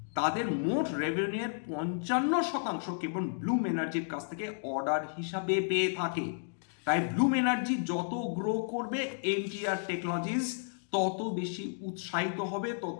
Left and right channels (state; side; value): silent; right; digital silence